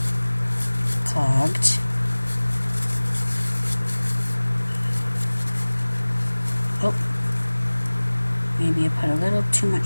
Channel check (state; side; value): inverted; both; correlation -1.00